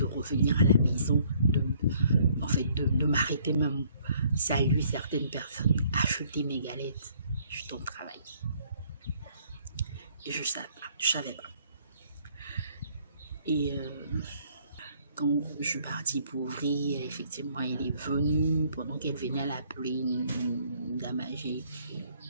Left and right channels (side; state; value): both; inverted; correlation -0.63